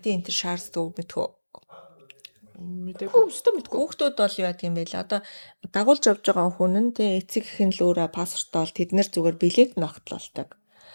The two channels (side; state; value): both; inverted; correlation -1.00